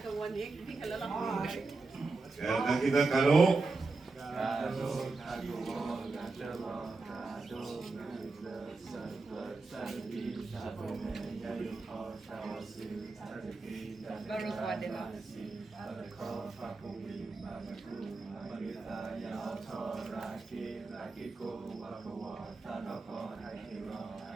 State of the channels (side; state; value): left; quieter; 3.6 dB